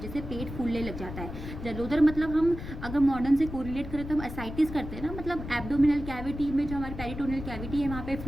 से पेट फूलने लग जाता है। जलोदर मतलब हम अगर मॉडर्न से कोरिलेट करें तो हम एसाइटिस करते हैं ना, मतलब एब्डोमिनल कैविटी में जो हमारी पेरिटोनियल कैविटी है वहाँ पे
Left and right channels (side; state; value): left; noise; rumble, 9 dB below the sound